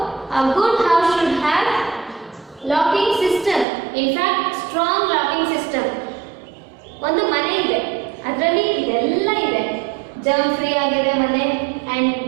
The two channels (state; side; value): drops out; left; at 3.7 s